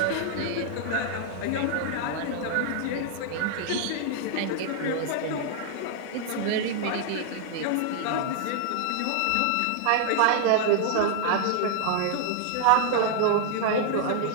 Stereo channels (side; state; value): both; different; correlation 0.00